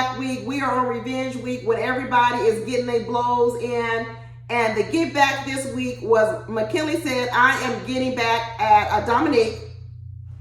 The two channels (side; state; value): both; identical; correlation 1.00